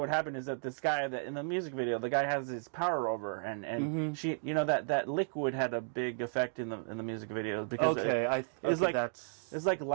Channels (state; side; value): silent; left; digital silence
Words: happened is that this guy that in the music video, the guy has his power over, and she, that liquid had a big effect in the music video because it's like